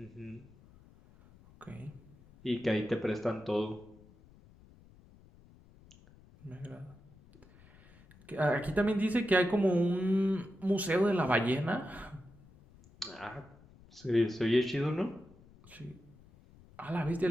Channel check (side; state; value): left; noise; rumble, 25 dB below the sound